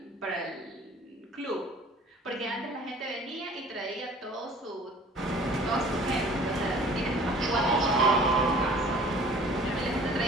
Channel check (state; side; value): normal; both; correlation 0.49